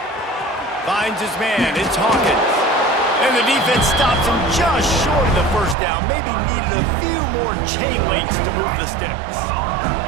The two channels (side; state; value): left; drops out; at 5.8 s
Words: Finds his man, it's Hawkins. And the defense stops him just short of the first down. Maybe needed a few more chain links to move the sticks.